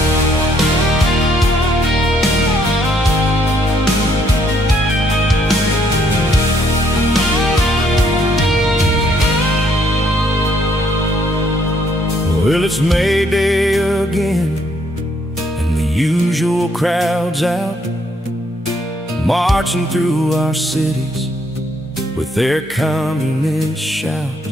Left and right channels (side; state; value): both; normal; correlation 0.69